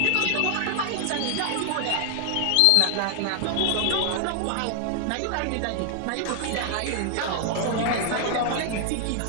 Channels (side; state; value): both; different; correlation 0.00